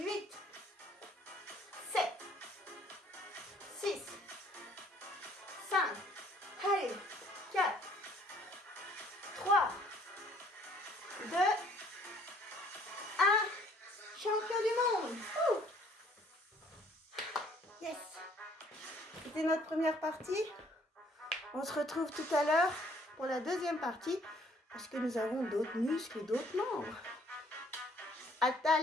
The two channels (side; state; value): both; normal; correlation 0.60